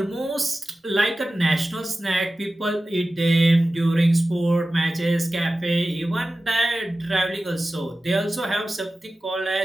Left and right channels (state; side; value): normal; both; correlation 0.95